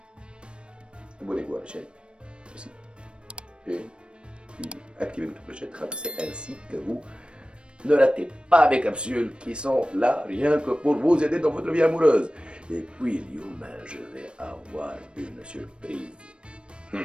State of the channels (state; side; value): late; left; 0.057 ms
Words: abonnez-vous à la chaîne, ici, et puis activez votre clochette, c'est ainsi que vous ne ratez pas mes capsules qui sont là rien que pour vous aider dans votre vie amoureuse. Et puis, Lyouma, je vais avoir une surprise.